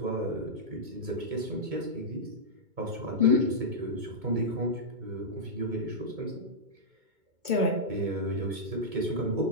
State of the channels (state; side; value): late; left; 2.2 ms